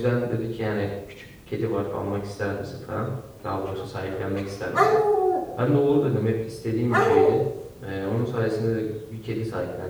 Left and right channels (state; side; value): identical; both; correlation 1.00